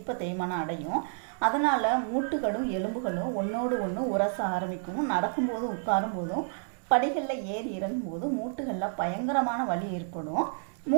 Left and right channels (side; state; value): left; silent; digital silence